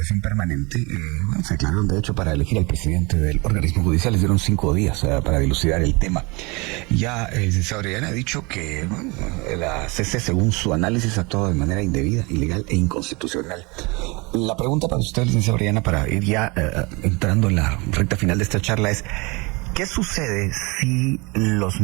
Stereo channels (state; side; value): quieter; left; 27.0 dB